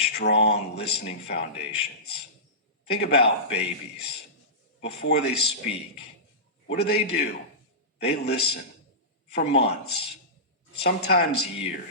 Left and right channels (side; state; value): both; normal; correlation -0.19